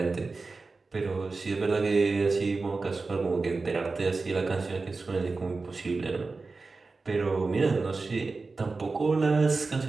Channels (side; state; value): left; quieter; 3.9 dB